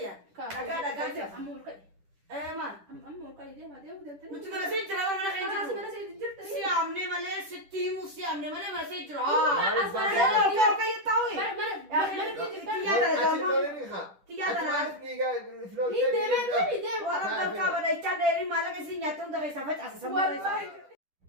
دقا أمور كاي إيه مان أمور كاي دي ما دي ودنتني نتمنى سيد جرا ولا خير خلاص ما سيد جرت سيامني مالي ستي مو سيامني مالي ما سيد جرا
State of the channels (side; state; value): left; late; 10 ms